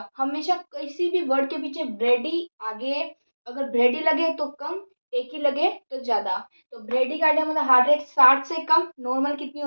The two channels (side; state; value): both; inverted; correlation -1.00